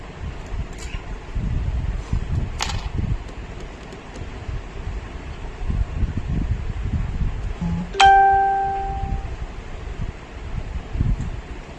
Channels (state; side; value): identical; both; correlation 1.00